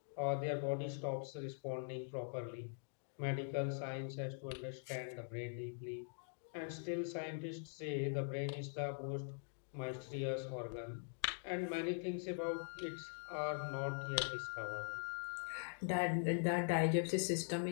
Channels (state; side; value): silent; right; digital silence